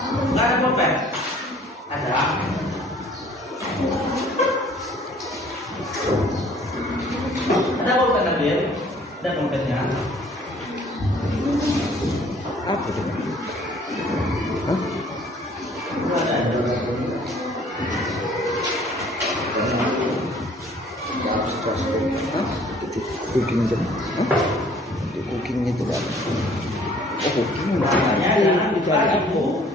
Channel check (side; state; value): both; normal; correlation 0.56